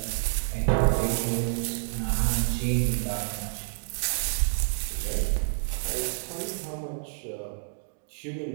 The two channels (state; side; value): silent; left; digital silence